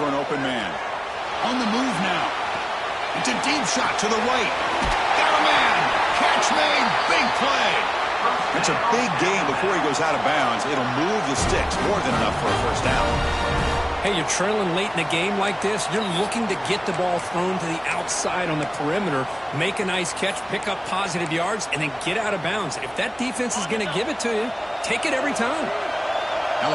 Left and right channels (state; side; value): identical; both; correlation 1.00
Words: an open man. On the move now. It's a deep shot to the right. Got a man. Catch made. Big play. It's a big gain before he goes out of bounds. It'll move the sticks more than enough for a first down. Hey, you're trailing late in a game like this. You're looking to get the ball thrown to the outside on the perimeter, make a nice catch, pick up positive yards, and then get out of bounds. If that defense is going to give it to you, take it every time.